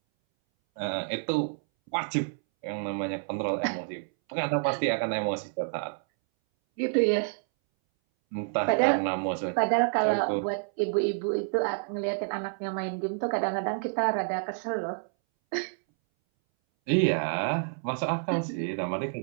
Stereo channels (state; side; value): silent; left; 59 dB below the other